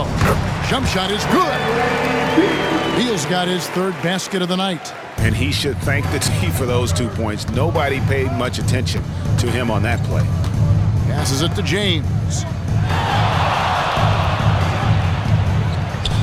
Jump shot is good. Beal's got his third basket of the night. And he should thank the team for those 2 points. Nobody paid much attention to him on that play. Passes it to James.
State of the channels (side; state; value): both; identical; correlation 1.00